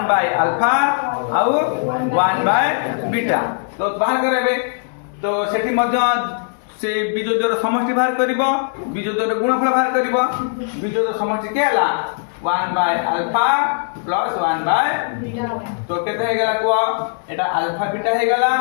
आउ 1/बीटा तो बाहर करबे तो सेठी मध्य से बीजोद्वर समष्टि बाहर करिवो बीजोद्वर गुणफल बाहर करिवो बीजोद्वर समष्टि के हला 1/अल्फा प्लस 1/बीटा तो केते हे गला को एटा अल्फा बीटा हे गला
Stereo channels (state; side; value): silent; right; 66 dB below the other